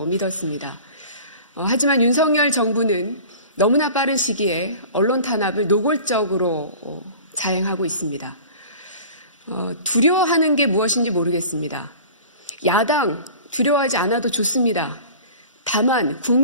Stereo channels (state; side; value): inverted; both; correlation -0.41